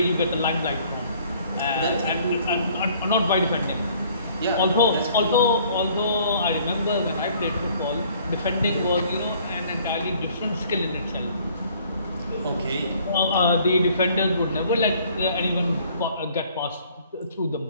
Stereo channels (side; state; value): both; inverted; correlation -0.58